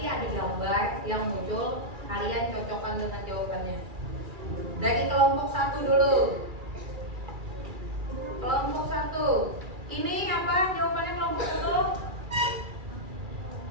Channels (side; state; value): left; late; 2.3 ms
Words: ada gambar yang muncul, kalian cocokkan dengan jawabannya. Dari kelompok 1 dulu. Kelompok 1. Ini apa jawabannya kelompok 1?